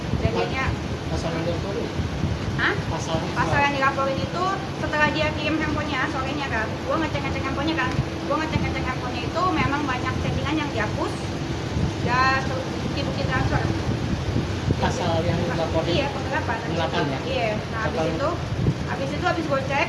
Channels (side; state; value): both; identical; correlation 1.00